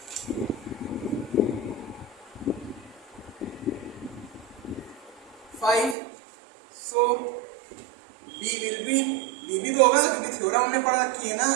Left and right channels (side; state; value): left; drops out; at 6.0 s